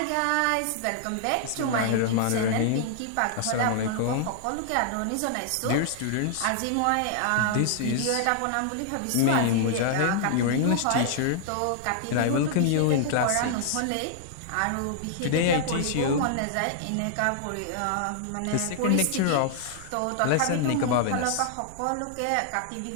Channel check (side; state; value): both; different; correlation -0.01